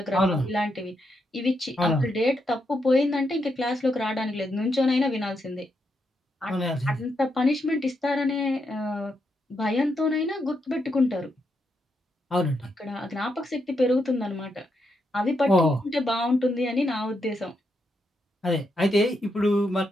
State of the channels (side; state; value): both; normal; correlation 0.81